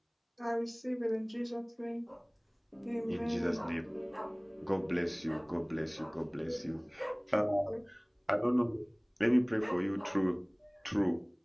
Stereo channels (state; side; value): identical; both; correlation 1.00